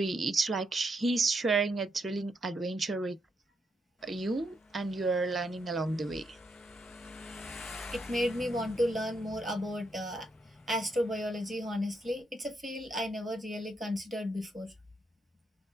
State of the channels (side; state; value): both; normal; correlation 0.80